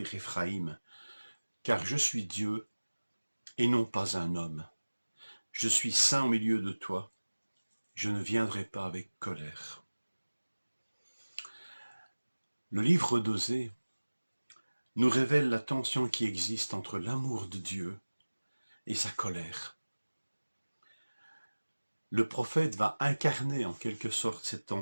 Éphraïm, car je suis Dieu et non pas un homme. Je suis saint au milieu de toi, je ne viendrai pas avec colère. Le livre d'Osée nous révèle la tension qui existe entre l'amour de Dieu et sa colère. Le prophète va incarner en quelque sorte cette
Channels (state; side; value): inverted; both; correlation -1.00